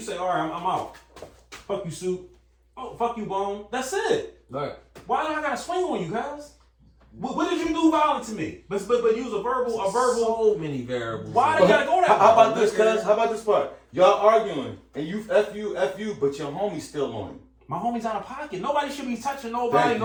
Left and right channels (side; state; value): both; identical; correlation 1.00